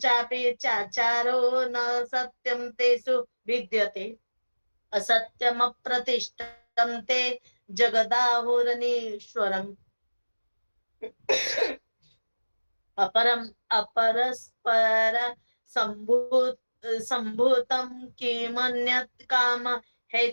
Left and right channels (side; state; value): both; inverted; correlation -1.00